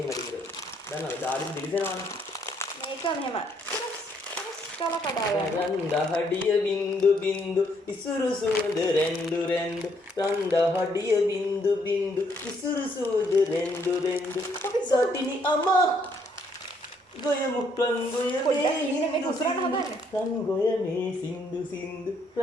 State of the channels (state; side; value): normal; both; correlation 0.70